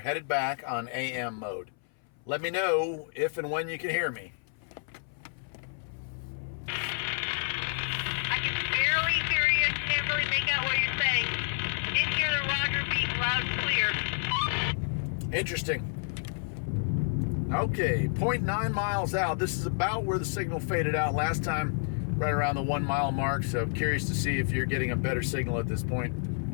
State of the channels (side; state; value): right; silent; 58 dB below the other